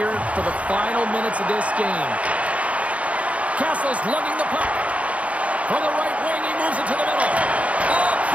for the final minutes of this game. Castle's lugging the puck. From the right wing, he moves it to the middle. Oh,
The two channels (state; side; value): late; left; 0.065 ms